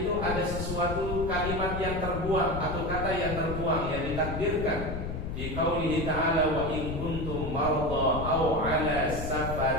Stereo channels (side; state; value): left; noise; rumble, 5 dB below the sound